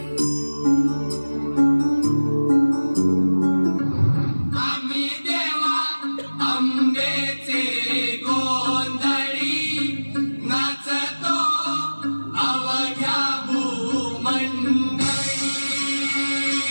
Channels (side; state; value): both; inverted; correlation -1.00